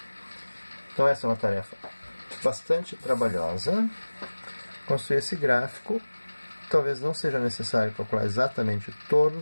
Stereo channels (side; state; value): both; inverted; correlation -1.00